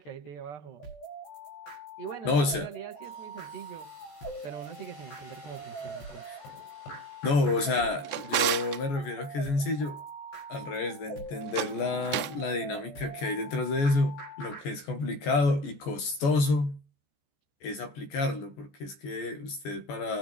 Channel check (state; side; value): late; right; 14 ms